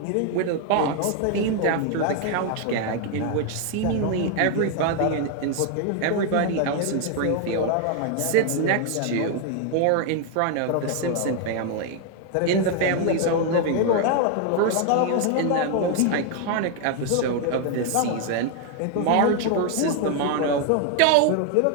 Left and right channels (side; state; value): both; different; correlation 0.00